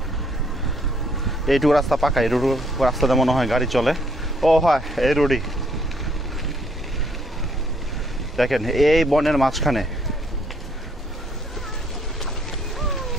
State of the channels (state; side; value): normal; both; correlation 0.67